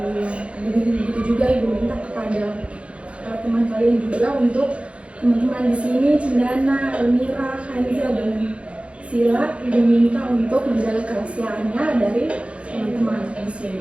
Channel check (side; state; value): left; late; 0.060 ms